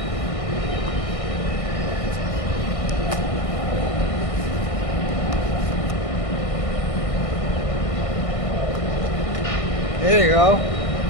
There you go.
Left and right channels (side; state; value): right; late; 1.6 ms